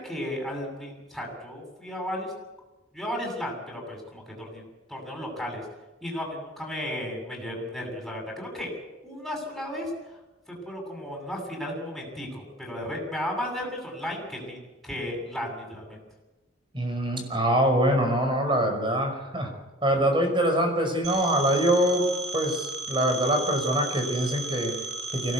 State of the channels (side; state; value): both; normal; correlation 0.43